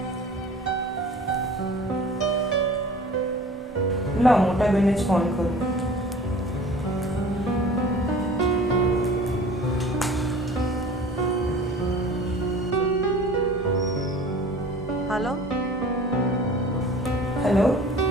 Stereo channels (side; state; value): both; normal; correlation 0.44